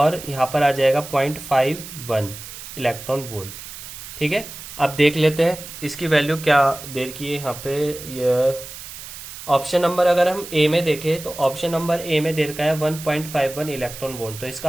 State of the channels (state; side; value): noise; right; hiss, 12 dB below the sound